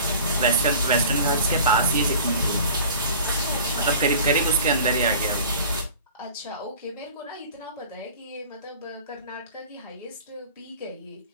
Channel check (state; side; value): inverted; both; correlation -0.43